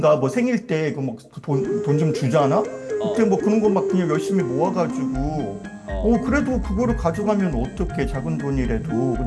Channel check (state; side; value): identical; both; correlation 1.00